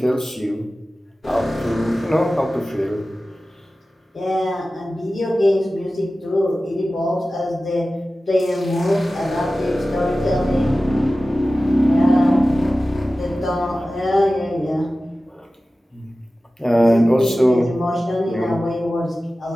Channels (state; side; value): normal; both; correlation 0.95